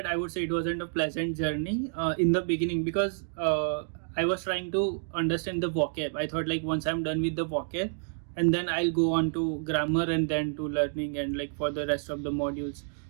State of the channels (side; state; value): left; silent; digital silence